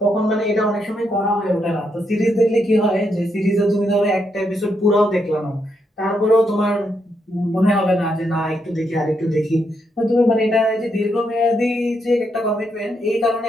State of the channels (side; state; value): both; normal; correlation 0.79